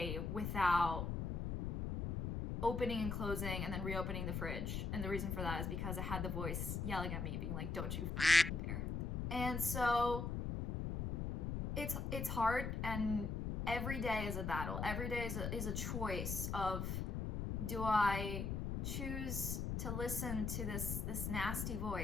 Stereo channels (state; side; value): noise; left; rumble, 1 dB below the sound